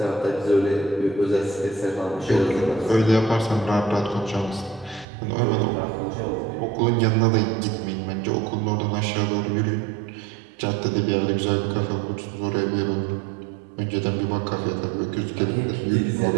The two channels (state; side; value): drops out; left; at 5.1 s